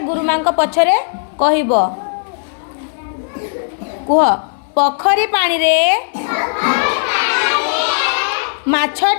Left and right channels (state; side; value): silent; right; digital silence